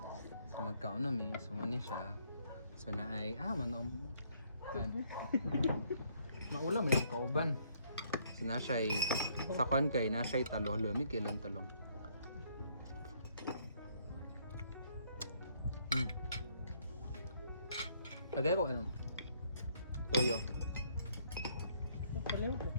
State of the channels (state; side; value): inverted; both; correlation -0.67